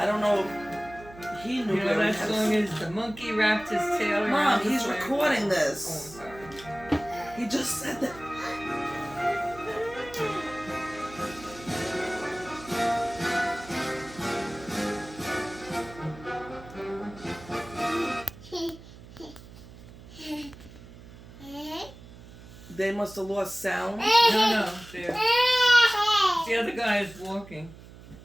don't know if he knew where he was. That song is The Monkey Wrapped His Tail Around Mom, the he's Flag. recording this. Oh, I'm sorry. He just said that. They must have lost sound. No. The other guy is walking.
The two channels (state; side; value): noise; right; hum, 18 dB below the sound